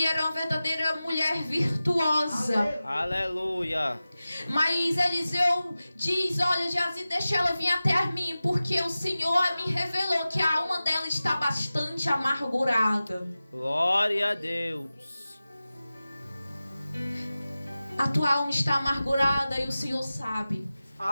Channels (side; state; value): both; inverted; correlation -0.95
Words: era uma verdadeira mulher virtuosa. Aleluia. Mas Eliseu diz: olha, Geazi, deixa ela vir até mim, porque o Senhor me revelou que a alma dela está bastante amargurada. Glória a Deus. A tua alma está amargurada e o Senhor sabe.